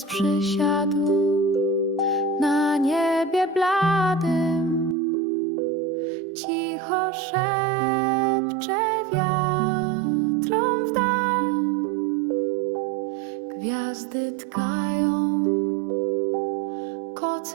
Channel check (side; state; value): left; drops out; at 5.0 s